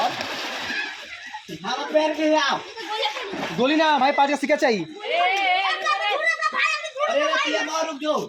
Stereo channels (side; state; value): both; identical; correlation 1.00